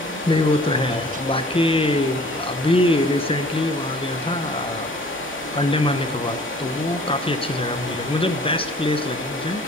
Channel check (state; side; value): normal; both; correlation 0.51